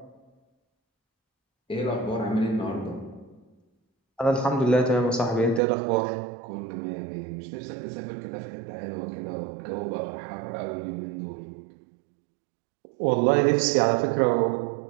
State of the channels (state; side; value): drops out; left; at 5.6 s